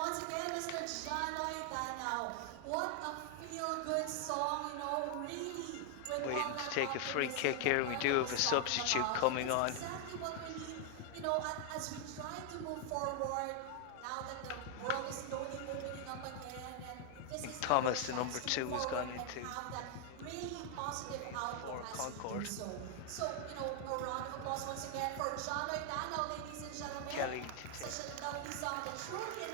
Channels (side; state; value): both; different; correlation 0.00